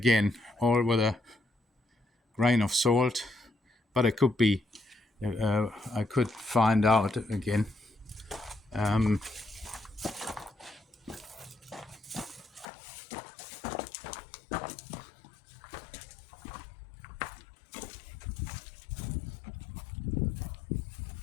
all with a grain of salt, but it could be, I could find out again.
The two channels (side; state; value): right; drops out; at 12.7 s